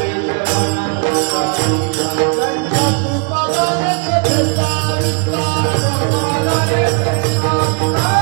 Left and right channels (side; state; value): left; quieter; 35.4 dB